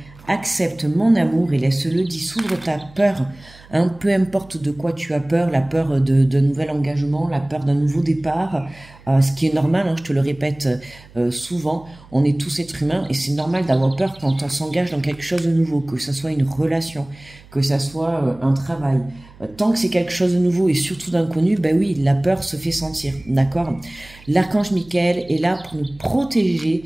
Accepte mon amour et laisse-le dissoudre ta peur. Peu importe de quoi tu as peur, la peur d'un nouvel engagement, la peur d'un nouveau départ, ce qui est normal, hein, je te le répète souvent, on est tous êtres humains et c'est normal d'avoir peur quand on s'engage dans quelque chose de nouveau, que ce soit une relation, que ce soit un travail. Tant que c'est quelque chose de nouveau et surtout d'inconnu, ben oui, la peur se fait sentir, d'accord? L'archange Michael est là pour nous protéger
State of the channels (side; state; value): right; noise; hum, 23 dB below the sound